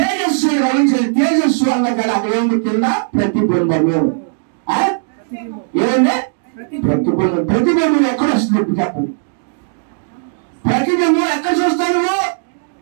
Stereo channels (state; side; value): silent; left; digital silence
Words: రవించారు. తేజస్సు అన్న కదా అక్కడ ఏమి కింద ప్రతిబింబము. ఏమంటే ప్రతిబింబం. ప్రతిబింబం ఎక్కడ వస్తుంది ఇప్పుడు చెప్పండి? ప్రతిబింబం ఎక్కడ చూస్తాను?